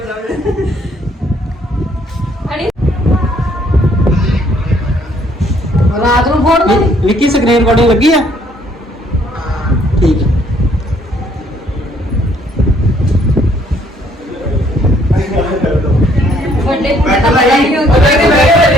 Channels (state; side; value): normal; both; correlation 0.65